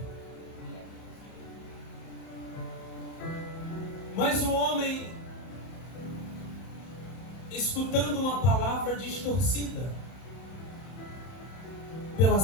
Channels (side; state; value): right; late; 31 ms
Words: Mas o homem, escutando uma palavra distorcida pela